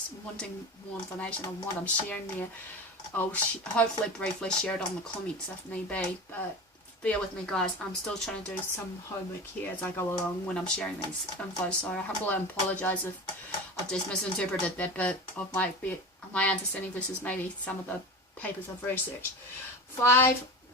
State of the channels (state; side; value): normal; both; correlation 0.30